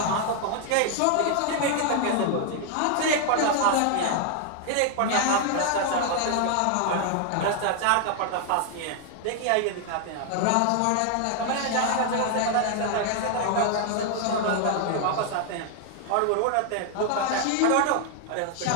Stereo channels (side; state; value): both; different; correlation 0.00